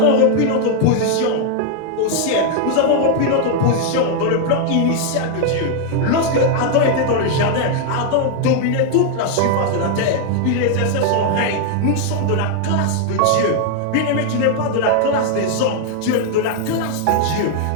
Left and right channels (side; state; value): both; different; correlation 0.00